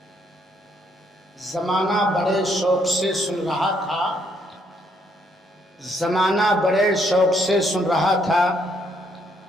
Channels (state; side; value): normal; both; correlation 0.71